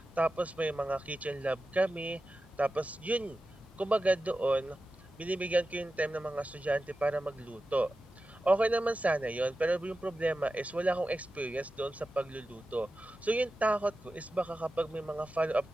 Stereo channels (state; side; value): normal; both; correlation 0.93